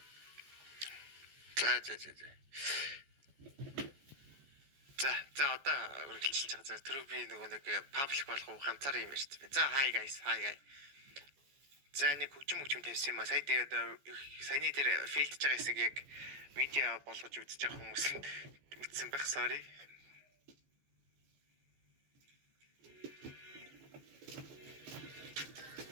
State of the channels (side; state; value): left; late; 14 ms